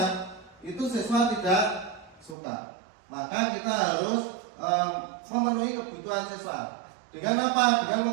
itu siswa tidak suka. Maka kita harus memenuhi kebutuhan siswa. Dengan apa?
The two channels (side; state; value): left; drops out; at 2.4 s